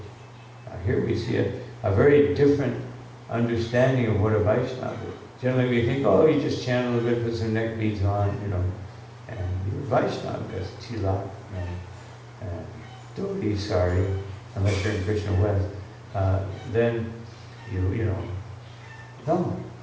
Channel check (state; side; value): identical; both; correlation 1.00